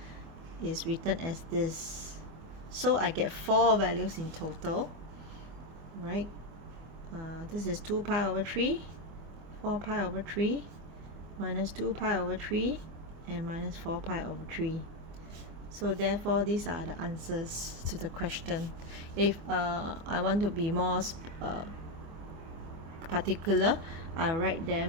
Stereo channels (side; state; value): left; late; 25 ms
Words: is written as this. So I get 4 values in total, right? This is 2 pi over 3, 4 pi over 3, minus 2 pi over 3, and minus 4 pi over 3. So therefore these are the answers to the question. If I want to be more particular, I write